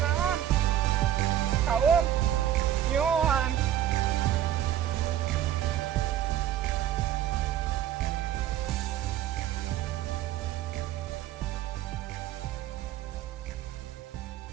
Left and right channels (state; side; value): quieter; left; 11.4 dB